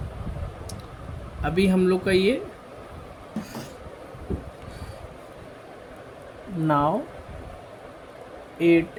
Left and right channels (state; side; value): identical; both; correlation 1.00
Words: अभी हम लोग का ये now